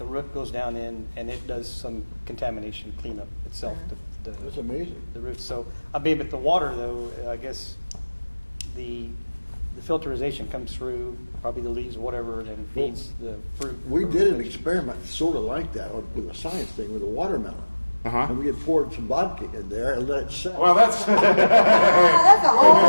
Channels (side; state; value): both; inverted; correlation -1.00